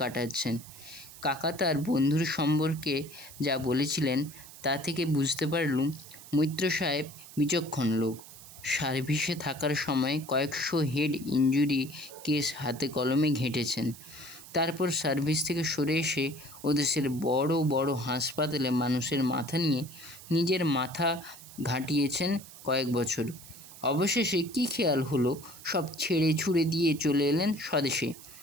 কাকা তার বন্ধুর সম্পর্কে যা বলেছিলেন তা থেকে বুঝতে পারলুম মৈত্র সাহেব বিচক্ষণ লোক। সার্ভিসে থাকার সময় কয়েকশো হেড ইনজুরি কেস হাতে কলমে ঘেঁটেছেন। তারপর সার্ভিস থেকে সরে এসে ওদেশের বড় বড় হাসপাতালে মানুষের মাথা নিয়ে নিজের মাথা ঘাঁটিয়েছেন কয়েক বছর। অবশেষে কী খেয়াল হলো, সব ছেড়ে ছুড়ে দিয়ে চলে এলেন স্বদেশে।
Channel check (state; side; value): noise; right; hiss, 17 dB below the sound